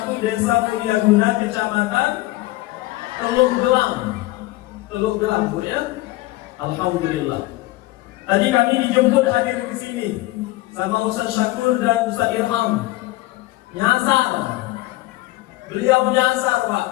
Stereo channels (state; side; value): quieter; right; 18.7 dB